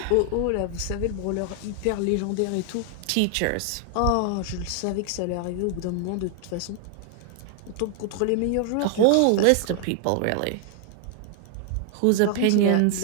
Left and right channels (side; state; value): both; different; correlation 0.00